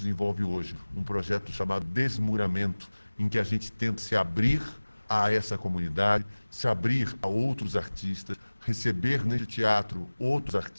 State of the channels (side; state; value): both; inverted; correlation -1.00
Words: hoje, um projeto chamado Desmuramento, em que a gente tenta se abrir a essa comunidade, se abrir a outros artistas, receber nesse teatro outros